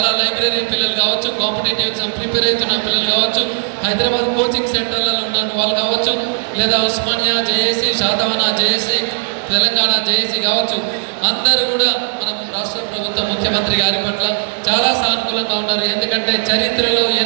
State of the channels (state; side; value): silent; left; 62 dB below the other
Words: లైబ్రరీ పిల్లలు కావచ్చు, కాంపిటేటివ్ ఎగ్జామ్ ప్రిపేర్ అవుతున్న పిల్లలు కావచ్చు, హైదరాబాద్ కోచింగ్ సెంటర్లలో ఉన్న వాళ్ళు కావచ్చు, లేదా Osmania JAC, Satavahana JAC, Telangana JAC కావచ్చు, అందరూ కూడా మన రాష్ట్ర ప్రభుత్వం ముఖ్యమంత్రి గారి పట్ల చాలా సానుకూలంగా ఉన్నారు. ఎందుకంటే చరిత్రలో